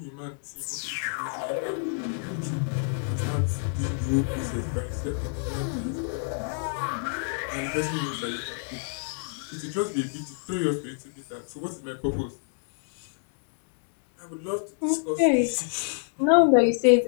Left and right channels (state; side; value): silent; right; 59 dB below the other